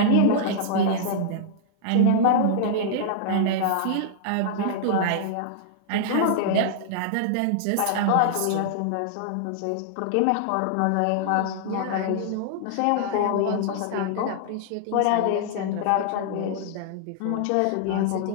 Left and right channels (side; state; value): both; different; correlation -0.01